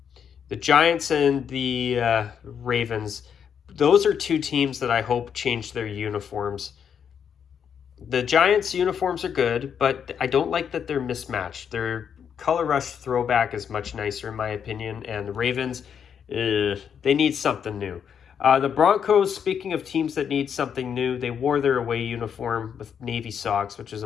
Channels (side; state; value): right; quieter; 7.7 dB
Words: Giants and the Ravens, those are two teams that I hope change their uniforms. The Giants' uniforms are good, but I don't like that they're mismatched. Their color rush throwback is much nicer in my opinion, and the Ravens, they need something new. The Broncos, speaking of teams that need something new, they wore their away uniform with navy socks, which is